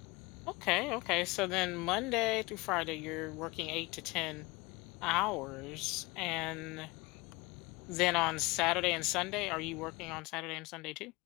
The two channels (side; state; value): right; quieter; 23.6 dB